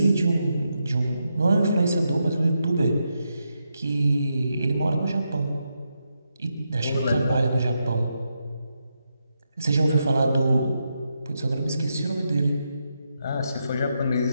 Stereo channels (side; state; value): both; inverted; correlation -0.84